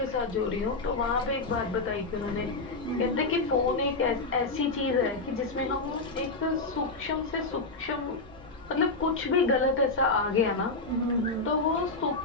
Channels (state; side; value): quieter; right; 3.4 dB